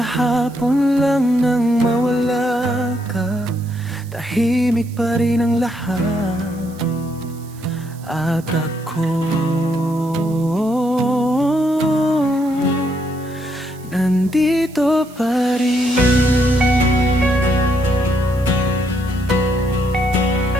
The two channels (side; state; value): right; noise; hiss, 23 dB below the sound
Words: lang nang mawala ka. Tahimik pa rin ang lahat, at ako nandito pa rin.